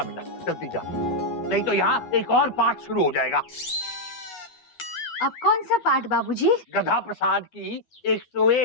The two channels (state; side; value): late; right; 12 ms